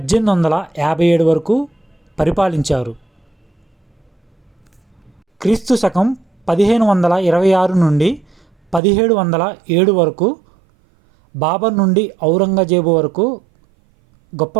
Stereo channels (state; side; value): drops out; left; at 8.8 s